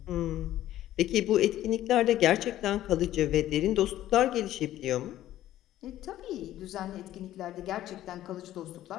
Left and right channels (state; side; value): quieter; right; 13.4 dB